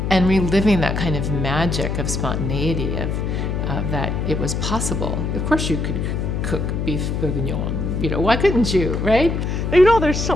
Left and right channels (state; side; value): noise; left; hum, 1 dB below the sound